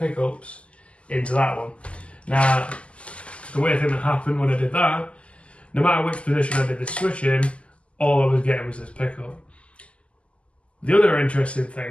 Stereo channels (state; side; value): late; right; 0.057 ms